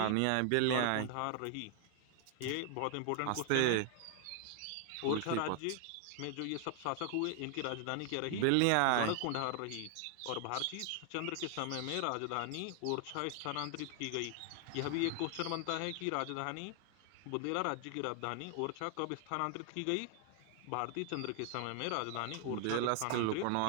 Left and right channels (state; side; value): different; both; correlation 0.00